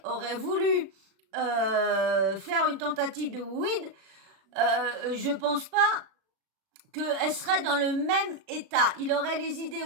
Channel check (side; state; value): left; late; 36 ms